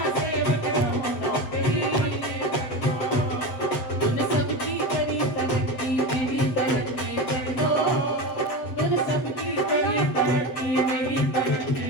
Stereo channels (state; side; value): late; right; 7.9 ms